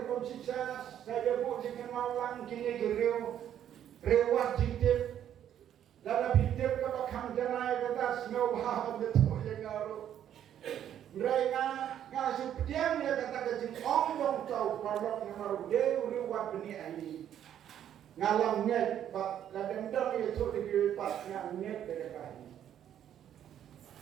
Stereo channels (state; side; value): quieter; left; 10.3 dB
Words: saya buat jika malang kini rewat jitip. Dalam hidup kita akan janai kita semua bahagia betul yang garu. Mereka ngasih pediam dia kata kecil orang tahu kalau mengaruh dia riwat benih ini. Ngalam net, pak kadang-kadang itu dikiripat yang net dekat ini.